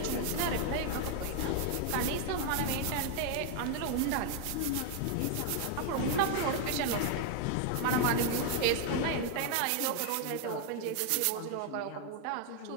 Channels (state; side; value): different; both; correlation 0.00